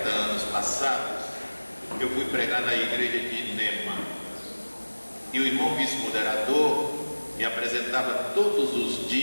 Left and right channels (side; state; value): both; inverted; correlation -1.00